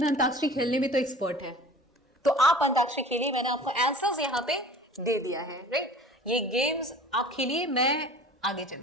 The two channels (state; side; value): normal; both; correlation 0.44